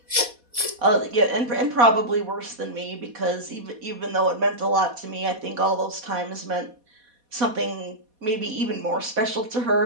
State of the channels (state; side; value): late; left; 4.2 ms